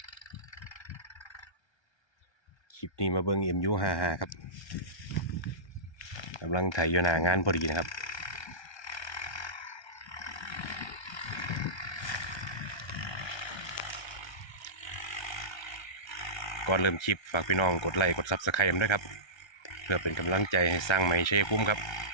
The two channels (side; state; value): right; late; 1.3 ms